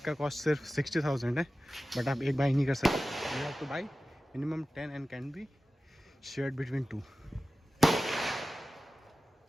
का cost सिर्फ 60,000 है, but आप एक by नहीं कर सकते. You have to buy minimum 10 and can be shared between 2.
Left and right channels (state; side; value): normal; both; correlation 0.95